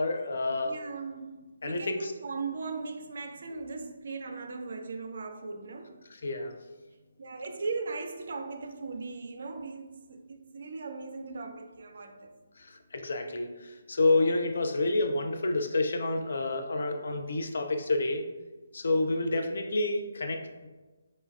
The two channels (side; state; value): both; inverted; correlation -0.83